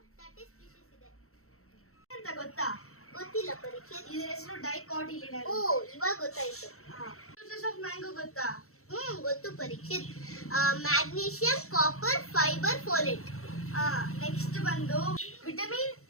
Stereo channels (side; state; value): right; late; 0.63 ms